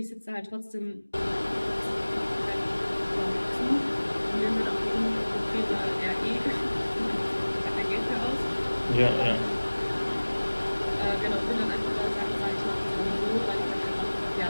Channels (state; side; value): inverted; both; correlation -1.00